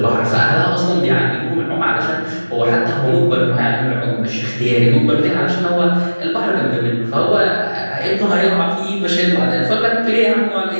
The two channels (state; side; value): inverted; both; correlation -1.00